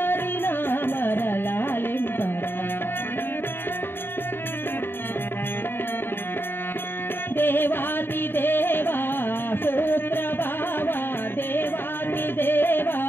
నామర లాలింపరా దేవాది దేవా సూత్ర భావా దేవాది దేవా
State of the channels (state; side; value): late; right; 0.10 ms